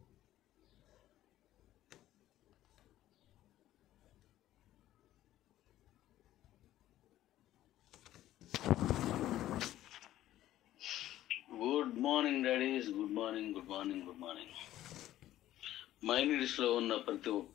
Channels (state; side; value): quieter; right; 13.7 dB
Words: Good morning daddies, good morning, good morning, good morning. మైనీడ్స్లో ఉన్న ప్రతి